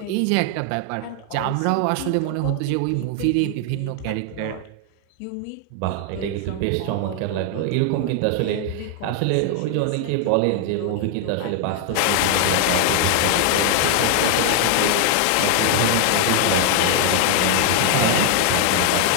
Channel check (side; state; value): both; different; correlation 0.00